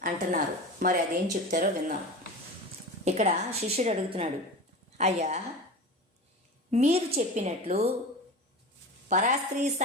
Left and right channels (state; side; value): normal; both; correlation 0.30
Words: అంటున్నారు. మరి అదేం చెప్తారో విన్నాం. ఇక్కడ శిష్యుడు అడుగుతున్నాడు, అయ్యా మీరు చెప్పినట్లు పరాస్త్రీ